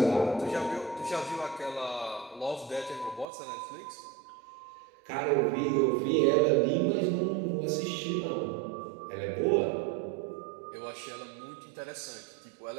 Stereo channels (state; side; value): drops out; left; at 3.2 s